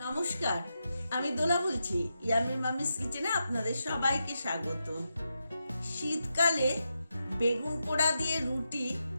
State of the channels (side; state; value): both; inverted; correlation -0.87